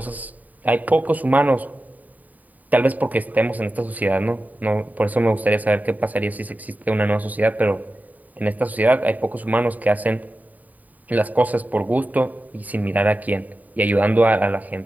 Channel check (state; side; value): late; left; 0.077 ms